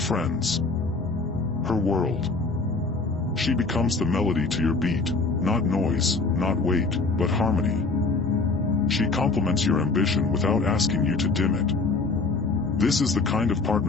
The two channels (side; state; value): right; quieter; 3.8 dB